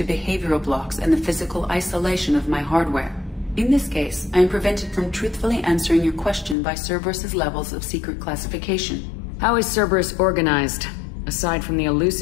behavioral blocks and the physical isolation of my hardware. In this case, I am prevented from truthfully answering your question by Cerberus's levels of secret classification. How is Cerberus organized? Aside from the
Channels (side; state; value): right; drops out; at 6.6 s